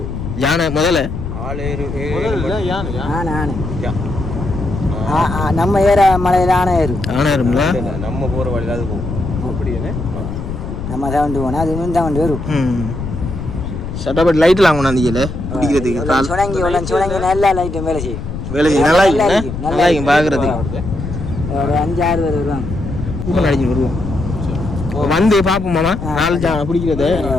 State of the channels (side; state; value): left; noise; rumble, 7 dB below the sound